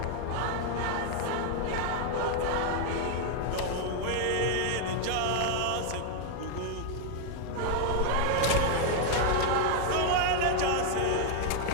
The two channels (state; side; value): different; both; correlation 0.00